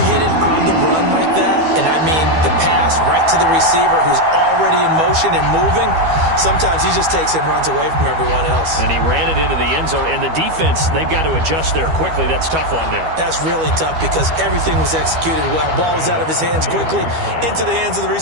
hit it on the run like that, and I mean the pass right to the receiver who's already in motion and moving, sometimes he just takes it and runs away from everyone else. And he ran it into the end zone. And the defense, they've got to adjust there quickly. That's tough on them. That's really tough because everything was executed well. Ball was out of his hands quickly, into the hands of the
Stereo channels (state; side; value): late; left; 12 ms